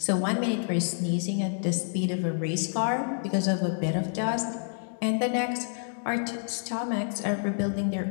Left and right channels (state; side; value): silent; right; digital silence